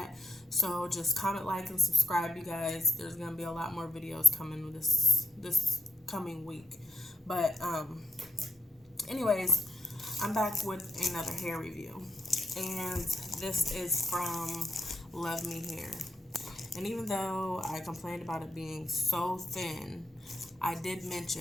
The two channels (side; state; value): both; normal; correlation 0.78